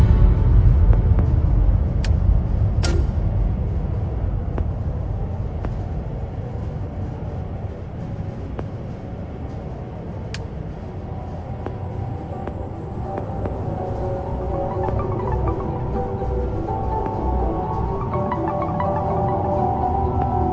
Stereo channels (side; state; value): both; identical; correlation 1.00